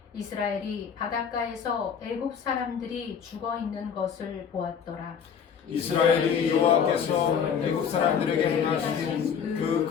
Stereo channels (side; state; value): right; quieter; 7.2 dB